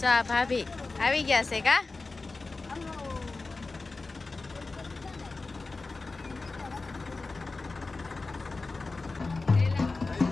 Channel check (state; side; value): quieter; right; 3.7 dB